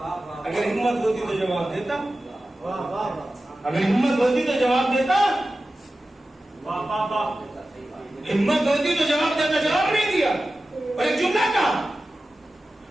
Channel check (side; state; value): both; normal; correlation 0.94